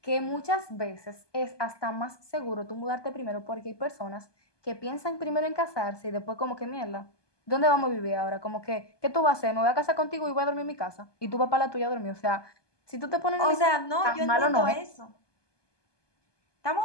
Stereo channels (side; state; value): right; late; 1.2 ms